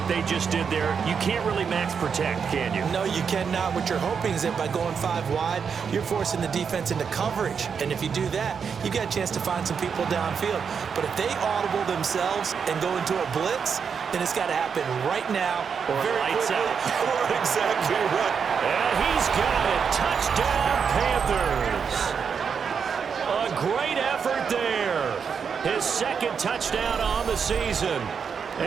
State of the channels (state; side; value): quieter; left; 6.5 dB